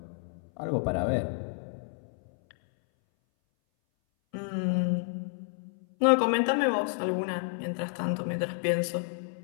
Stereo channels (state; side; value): silent; right; 58 dB below the other